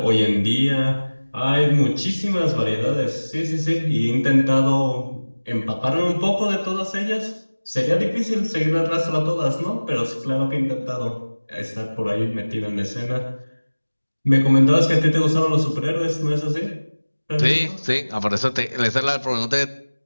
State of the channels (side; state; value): both; inverted; correlation -1.00